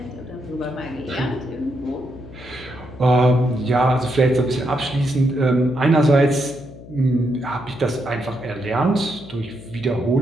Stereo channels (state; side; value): noise; left; hum, 17 dB below the sound